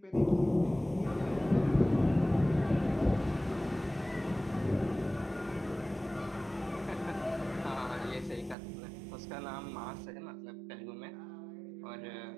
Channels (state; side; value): drops out; left; at 8.6 s